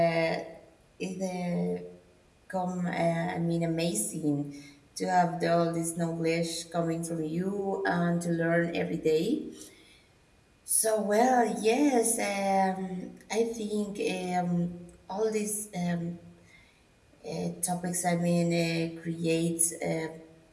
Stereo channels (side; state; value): both; identical; correlation 1.00